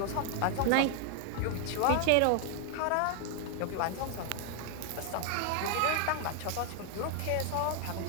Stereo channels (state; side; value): different; both; correlation 0.00